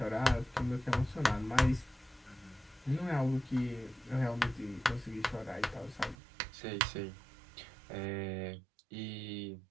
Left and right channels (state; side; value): drops out; left; at 6.2 s